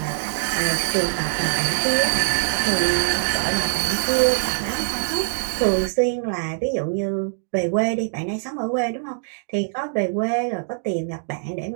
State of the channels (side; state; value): left; silent; digital silence